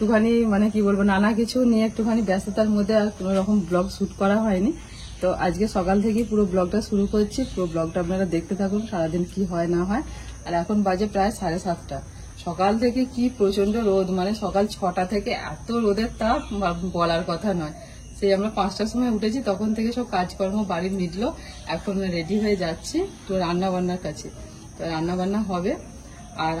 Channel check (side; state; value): both; identical; correlation 1.00